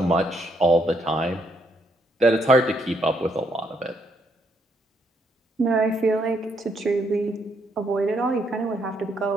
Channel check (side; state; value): both; normal; correlation 0.74